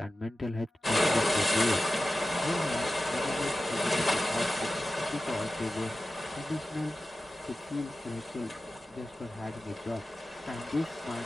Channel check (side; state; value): both; normal; correlation 0.94